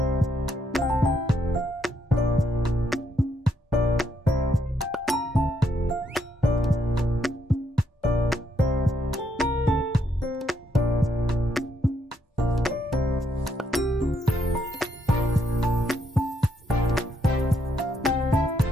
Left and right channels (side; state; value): both; normal; correlation 0.75